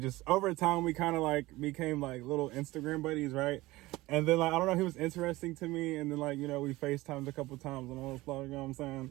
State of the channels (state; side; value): quieter; left; 19.3 dB